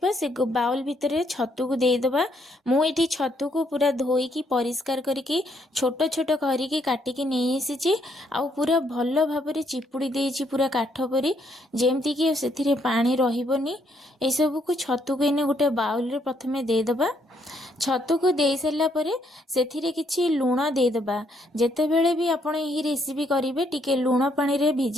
से बाउल भितर छतु को देदबा। मुझे छतु को पूरा धोईकी परिष्कार करके छोट छोट करके काटिकी नहीं आसी आउ पूरा भल भाव चिपुड़ी देइछि पूरा काठ परी जेमती कि से पानी रहिबनी। ए सब को छतु को इने गोटे बाउल रे प्रथमे देदबा। छतु को दे सारा पर से किछि लुण देदबा। जेतेबेले भी आपण यही रेसिपी करेंगे टिके लुण पानी रे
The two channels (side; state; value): both; normal; correlation 0.72